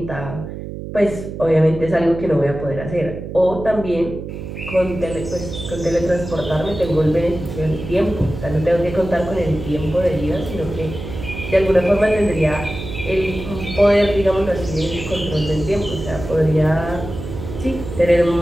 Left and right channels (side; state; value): right; noise; hum, 9 dB below the sound